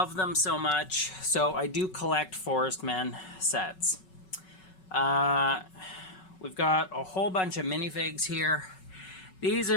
them so much. So I do collect Forest Men sets. We've got a whole bunch of minifigs here. These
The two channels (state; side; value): late; right; 5.4 ms